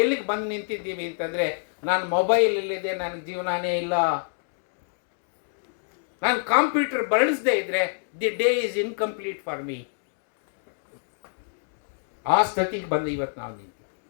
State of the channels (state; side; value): silent; right; digital silence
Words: ಎಲ್ಲಿಗೆ ಬಂದು ನಿಂತಿದ್ದೀವಿ ಅಂತಂದರೆ, ನಾನು ಮೊಬೈಲಲ್ಲಿದೆ, ನನಗೆ ಜೀವನನೇ ಇಲ್ಲ, ನಾನು ಕಾಂಪ್ಯೂಟರ್ ಬಳಸದೇ ಇದ್ದರೆ the day is incomplete for me. ಆ ಸ್ಥಿತಿಗೆ ಬಂದು ಇವತ್ತು ನಾವು ನಿಂತೀವಿ.